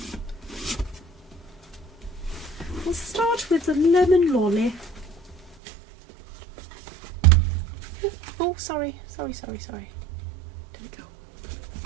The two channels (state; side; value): drops out; left; at 5.6 s